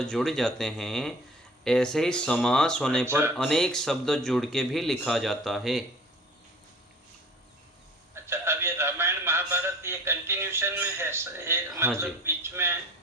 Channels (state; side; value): normal; both; correlation 0.45